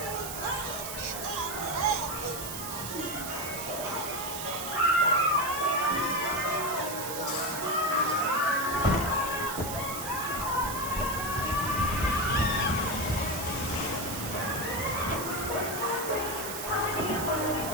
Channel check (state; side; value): noise; right; hiss, 7 dB below the sound